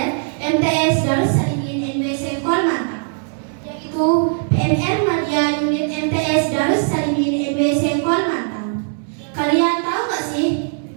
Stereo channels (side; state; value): left; silent; 66 dB below the other